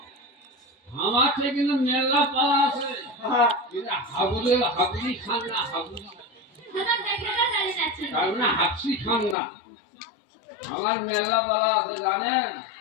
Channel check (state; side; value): drops out; right; at 9.3 s